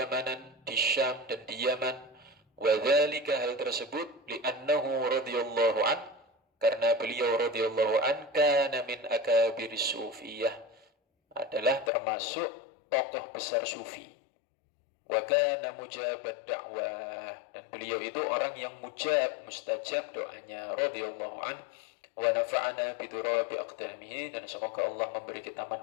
di Syam dan di Yaman, wa dzalika, hal tersebut, li'annahu radhiyallahu an, karena beliau radhiyallahu an kana min akabiris sufiyah, adalah termasuk tokoh besar sufi. Wa kana mujabat da'wah, dan beliau itu orang yang mujab, mustajab doanya, radhiyallahu an, wa nafa'ana bi turabi aqdamihi, dan semoga Allah memberi kita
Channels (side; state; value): right; drops out; at 11.9 s